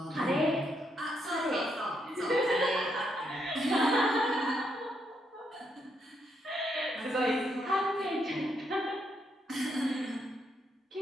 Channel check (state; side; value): normal; both; correlation 0.77